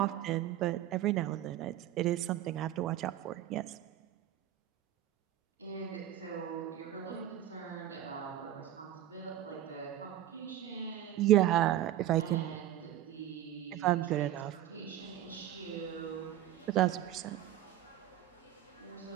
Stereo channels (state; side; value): quieter; left; 12.5 dB